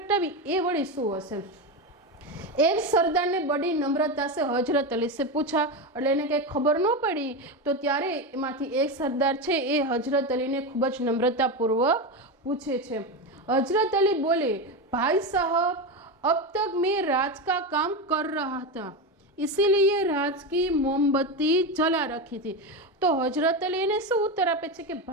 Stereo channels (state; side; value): normal; both; correlation 0.16